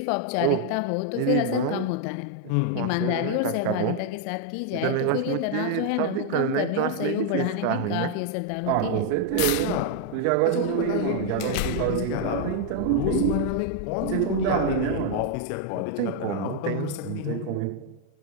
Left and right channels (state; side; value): different; both; correlation 0.00